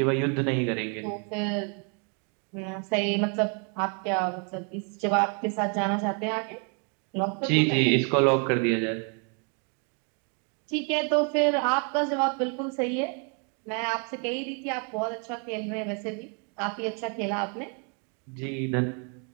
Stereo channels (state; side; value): quieter; left; 38.6 dB